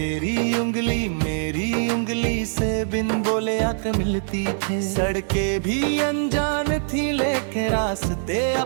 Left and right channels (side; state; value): left; silent; 63 dB below the other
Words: उंगली मेरी उंगली से बिन बोले आकर मिलती थी। सड़कें भी अनजान थी लेकिन रास्ते